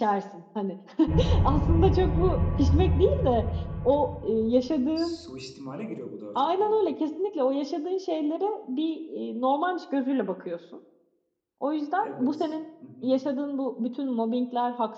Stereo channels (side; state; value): both; identical; correlation 1.00